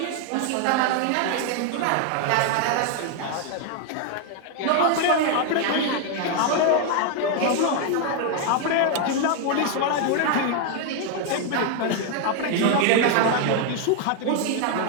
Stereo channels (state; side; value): different; both; correlation 0.00